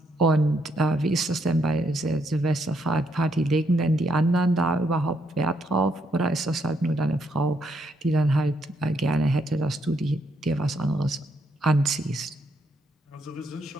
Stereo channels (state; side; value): normal; both; correlation 0.75